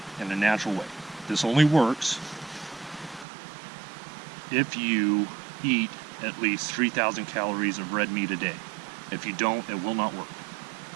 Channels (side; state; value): left; drops out; at 3.2 s